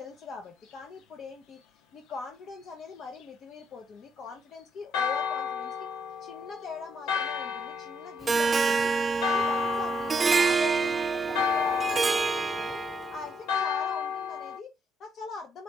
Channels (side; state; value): both; normal; correlation 0.75